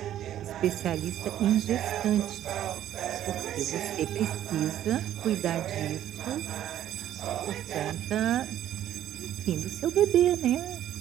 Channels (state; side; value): quieter; left; 11.7 dB